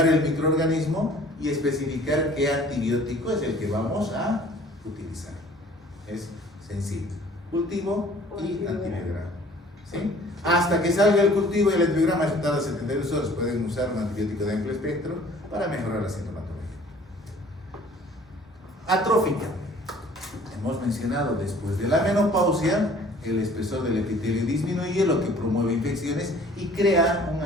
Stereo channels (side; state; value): both; normal; correlation 0.52